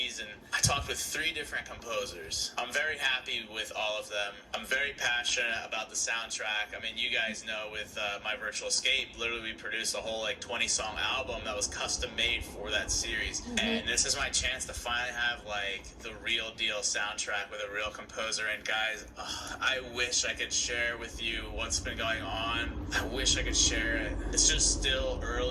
and I talked with 3 different composers. I'm very happy with all of them. I'm very passionate about the soundtrack. I mean, you guys know with My Virtual Escape, literally we produced a whole, like, 20-song album that was custom made for that series. And this is my chance to finally have, like, the real deal soundtrack with a real composer. And guys, I wish I could share with you what's been going on. I wish I could share it. It's just still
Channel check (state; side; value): identical; both; correlation 1.00